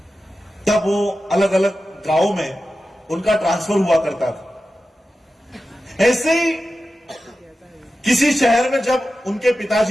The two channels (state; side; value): normal; both; correlation 0.93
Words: तब वो अलग अलग गांवों में उनका ट्रांसफर हुआ करता था। ऐसे ही किसी शहर में जब उनके